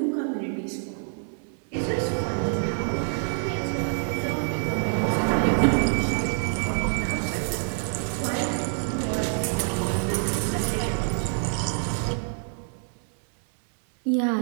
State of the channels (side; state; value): left; silent; 60 dB below the other